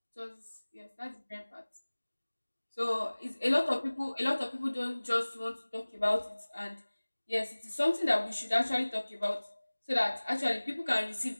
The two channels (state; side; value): inverted; both; correlation -1.00